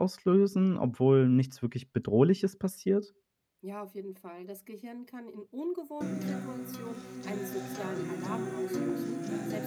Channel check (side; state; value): both; identical; correlation 1.00